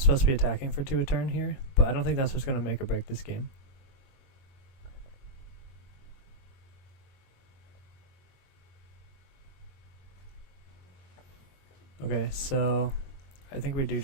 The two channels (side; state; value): right; late; 22 ms